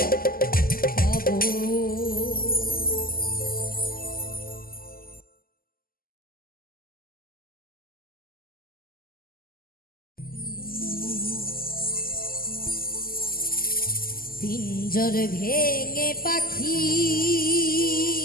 পাবো। পিঞ্জর ভেঙে পাখি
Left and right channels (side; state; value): right; late; 0.42 ms